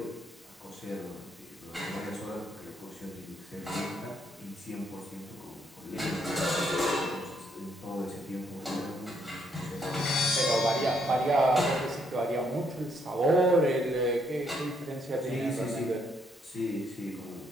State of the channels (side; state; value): both; normal; correlation 0.72